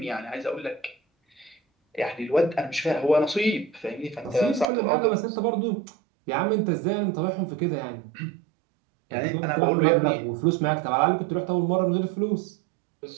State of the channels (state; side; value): drops out; left; at 4.7 s